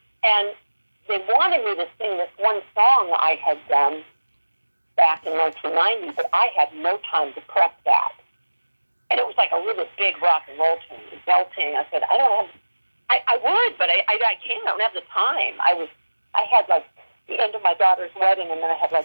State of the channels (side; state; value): both; inverted; correlation -1.00